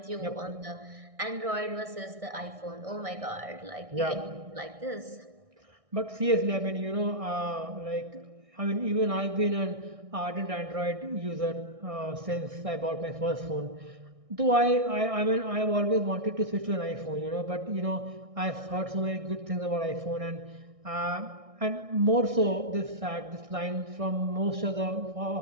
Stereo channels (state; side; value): late; left; 1.6 ms